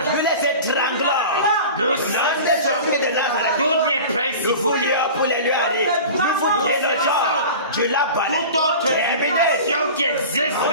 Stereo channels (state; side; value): inverted; both; correlation -0.36